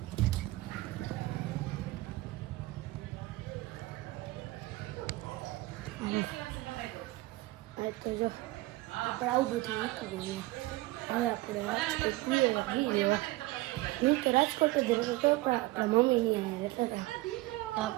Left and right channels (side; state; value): left; quieter; 19.5 dB